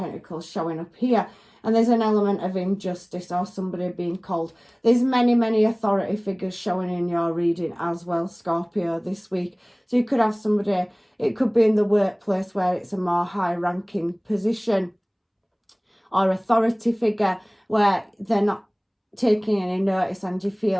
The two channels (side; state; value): both; identical; correlation 1.00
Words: showing up here. And there's an element of injustice or somebody being called. There's many authority figures showing in your reading as well, Scorpio, this week. So you could have somebody, it could be in the workplace where it's a more high-ranking position, or authority figure where they're not taking any notice and you